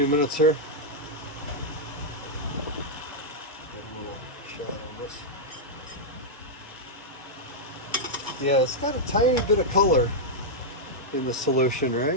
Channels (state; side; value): normal; both; correlation -0.04